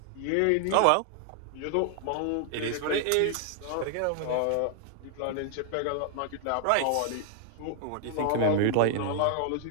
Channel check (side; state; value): both; different; correlation 0.00